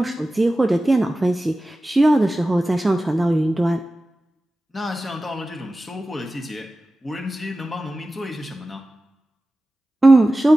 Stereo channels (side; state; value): both; normal; correlation 0.95